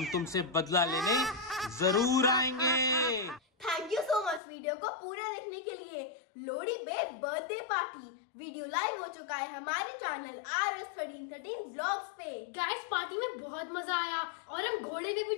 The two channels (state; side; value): drops out; right; at 4.4 s